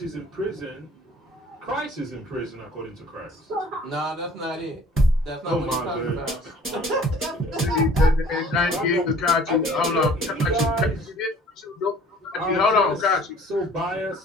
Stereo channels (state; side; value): normal; both; correlation 0.52